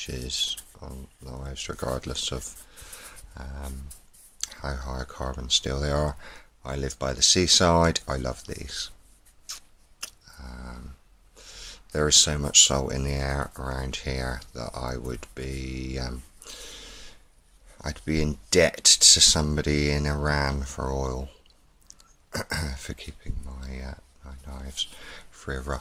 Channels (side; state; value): both; identical; correlation 1.00